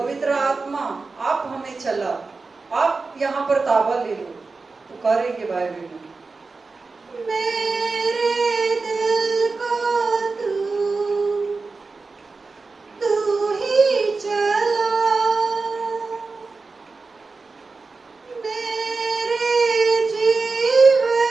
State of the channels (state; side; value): quieter; left; 4.0 dB